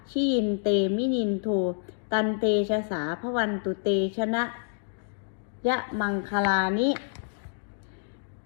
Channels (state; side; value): silent; right; digital silence